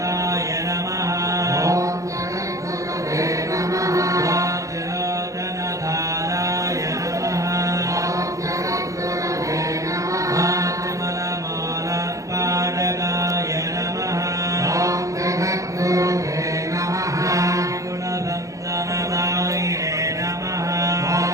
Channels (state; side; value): late; left; 0.16 ms